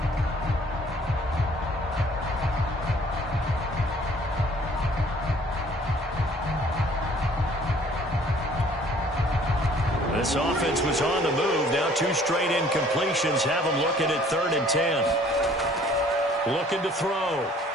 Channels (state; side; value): normal; both; correlation 0.56